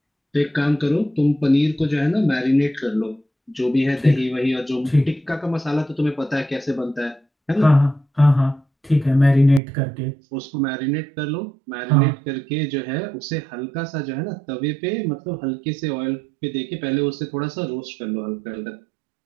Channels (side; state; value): left; drops out; at 9.6 s